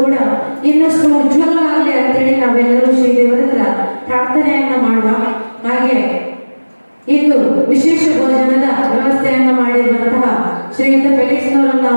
ಕೂಡ ಇನ್ನಷ್ಟು ಉಜ್ವಲವಾಗಲಿ ಅಂತೇಳಿ ನಾವೆಲ್ಲರೂ ಶ್ರೀ ದೇವರ ಹತ್ರ ಪ್ರಾರ್ಥನೆಯನ್ನ ಮಾಡುವ. ಹಾಗೆ ಇಂದು ವಿಶೇಷ ಭೋಜನದ ವ್ಯವಸ್ಥೆಯನ್ನ ಮಾಡಿರುವಂತಹ ಶ್ರೀಯುತ ಫೆಲಿಕ್ಸ್ ನವರನ್ನ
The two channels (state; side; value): inverted; both; correlation -1.00